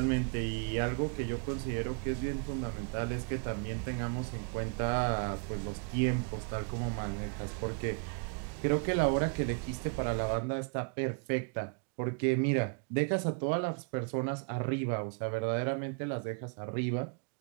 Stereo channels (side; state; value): left; quieter; 38.5 dB